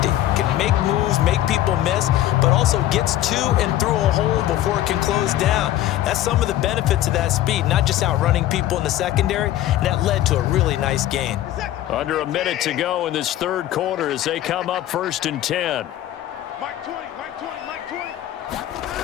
can make moves, make people miss, but also gets to and through a hole before it can close down. That's some of the benefits of that speed, not just outrunning people in the secondary, and that led to a really nice gain. Under a minute to go in this 3rd quarter as they come up 1st and 10.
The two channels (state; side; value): quieter; right; 13.5 dB